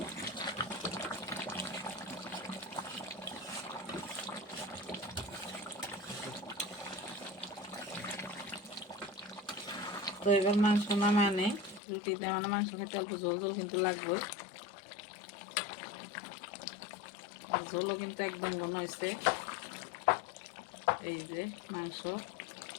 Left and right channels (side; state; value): right; drops out; at 11.8 s